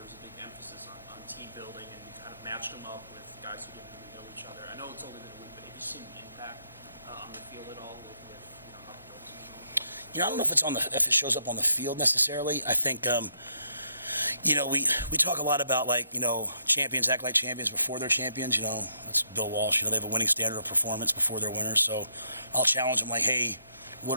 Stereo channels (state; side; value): inverted; both; correlation -0.75